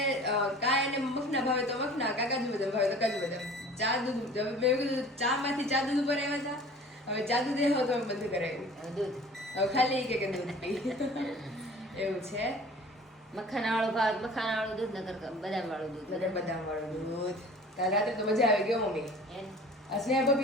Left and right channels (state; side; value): normal; both; correlation 0.45